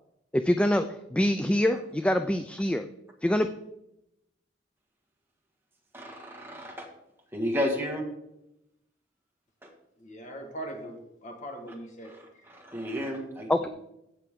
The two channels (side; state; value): both; normal; correlation 0.83